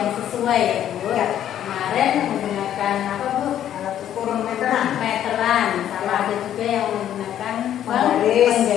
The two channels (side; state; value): right; quieter; 10.9 dB